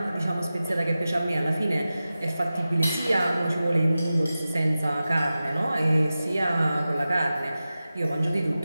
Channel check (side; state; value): both; inverted; correlation -0.94